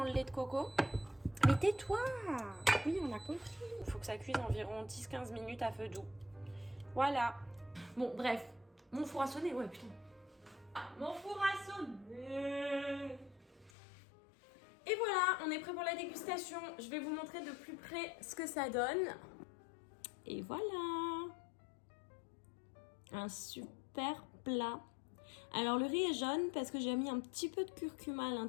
le lait de coco. Mais tais-toi! Oui, on a compris. Il faut que ça cuise environ 10-15 minutes à feu doux. Voilà. Bon, bref. Mon four a sonné, ouais, putain. Mon four a sonné. Et voilà, on est prêt pour la dégustation. Je vais vous montrer de plus près ce que ça donne. Et voilà. Un super plat. Alors le riz est jaune parce que j'ai mis un petit peu de curcuma à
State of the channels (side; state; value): right; drops out; at 13.7 s